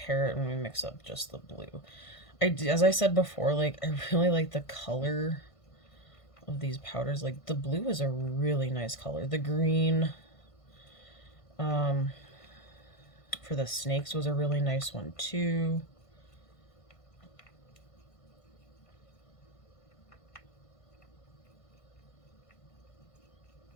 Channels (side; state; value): right; late; 1.5 ms